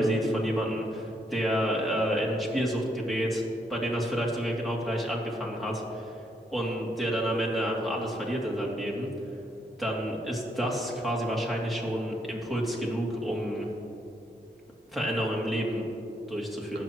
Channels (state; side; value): normal; both; correlation 0.74